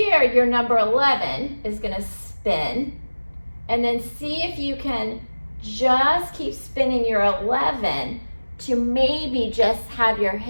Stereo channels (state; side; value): inverted; both; correlation -1.00